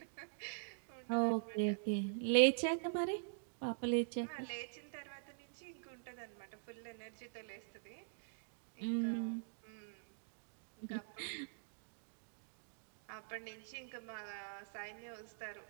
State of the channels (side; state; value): left; silent; digital silence